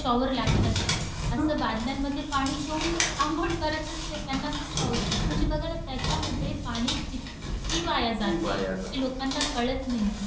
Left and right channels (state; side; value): identical; both; correlation 1.00